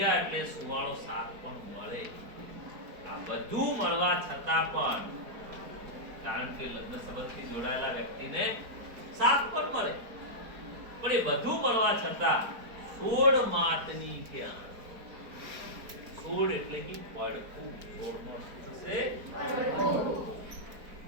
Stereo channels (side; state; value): left; late; 4.4 ms